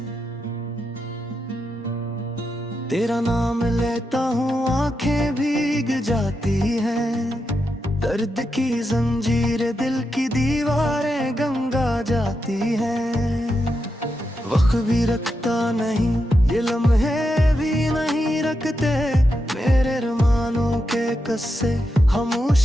तेरा नाम लेता हूँ आंखें भीग जाती हैं, दर्द की जंजीर दिल की दीवारें गंगा जाती हैं। वक्त भी रखता नहीं ये लम्हे भी नहीं रखते, मेरे अरमानों के कस्से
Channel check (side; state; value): both; normal; correlation 0.86